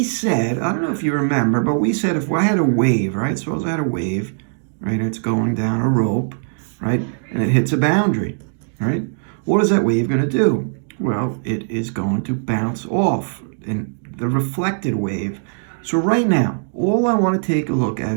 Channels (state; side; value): silent; left; digital silence